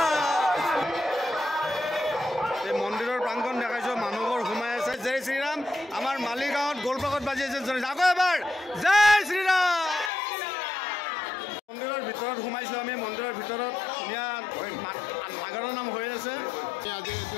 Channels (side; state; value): right; drops out; at 10.1 s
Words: এই মন্দিৰৰ প্ৰাংগণ দেখাইছোঁ মানুহবোৰ সোমাই আছে জয় শ্ৰীৰাম আমাৰ মালিগাঁৱত গোলপাকত বাজি আছে আকৌ এবাৰ জয় শ্ৰীৰাম মন্দিৰৰ ভিতৰত সোমাইছোঁ আমি মন্দিৰৰ ভিতৰত ধুনীয়া নাগৰৰ নাম হৈ আছে আজি